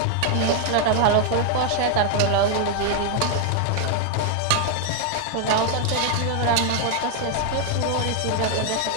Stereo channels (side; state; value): both; different; correlation 0.00